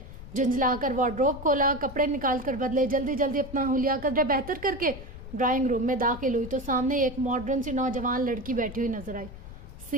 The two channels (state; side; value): noise; left; rumble, 13 dB below the sound